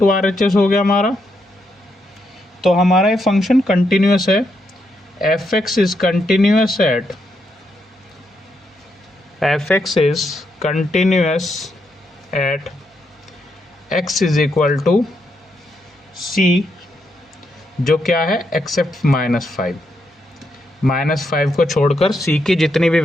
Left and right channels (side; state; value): both; normal; correlation 0.80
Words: R H S हो गया हमारा। तो हमारा ये फंक्शन कंटिन्यूस है। F x is continuous at x is equal to c, जो क्या है एक्सेप्ट -5। -5 को छोड़कर c की जितनी भी